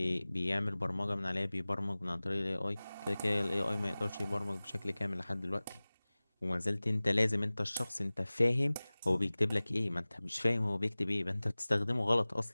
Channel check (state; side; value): inverted; both; correlation -0.99